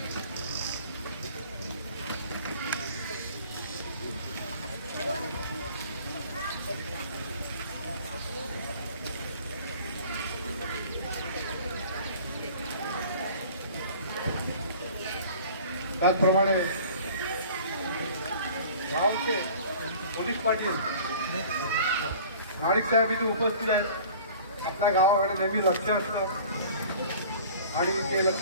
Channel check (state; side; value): inverted; both; correlation -0.46